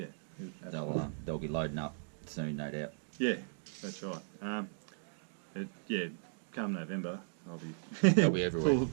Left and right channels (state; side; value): silent; left; digital silence